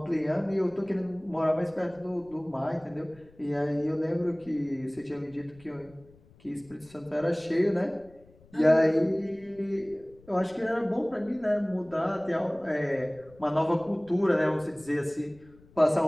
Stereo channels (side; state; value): left; noise; rumble, 26 dB below the sound